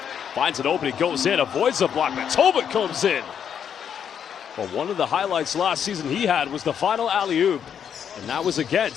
Finds an opening, goes in, avoids the block, but Tolbert comes in. Well, one of the highlights last season he had was the final alley-oop, and that was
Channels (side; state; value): right; quieter; 8.3 dB